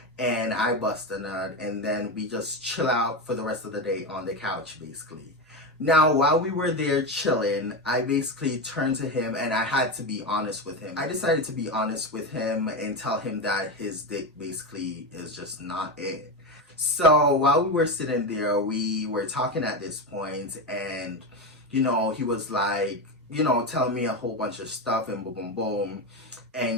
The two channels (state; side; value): normal; both; correlation 0.16